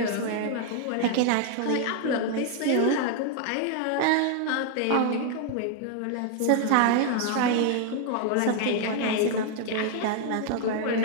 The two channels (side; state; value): both; different; correlation 0.00